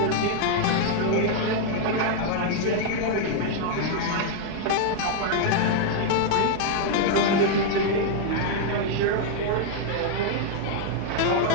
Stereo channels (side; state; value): both; different; correlation 0.00